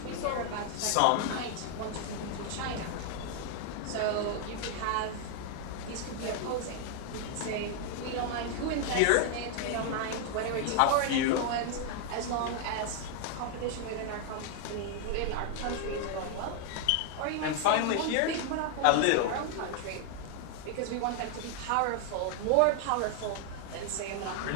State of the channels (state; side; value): different; both; correlation 0.00